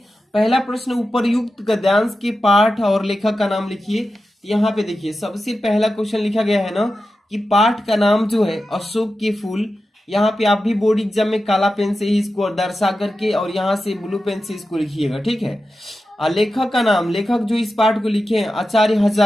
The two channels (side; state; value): both; normal; correlation 0.92